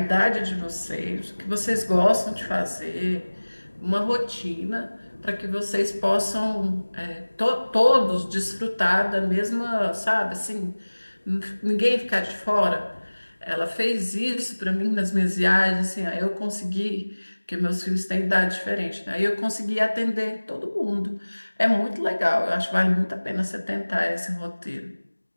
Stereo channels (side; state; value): both; inverted; correlation -1.00